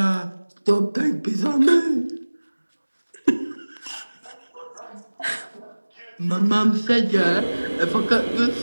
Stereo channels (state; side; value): inverted; both; correlation -1.00